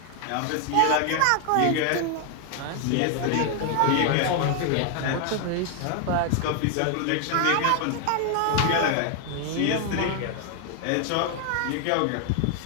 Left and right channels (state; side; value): different; both; correlation 0.00